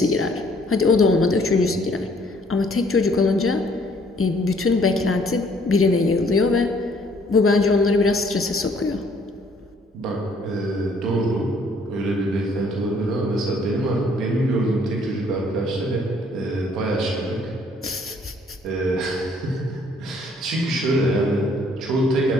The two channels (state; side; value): normal; both; correlation 0.62